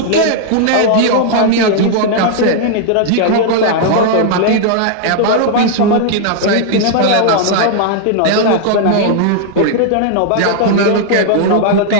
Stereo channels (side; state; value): both; different; correlation -0.01